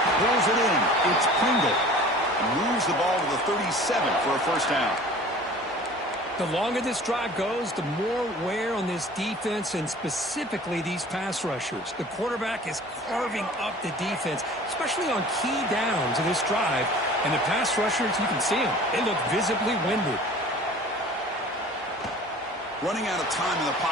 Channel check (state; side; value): normal; both; correlation 0.45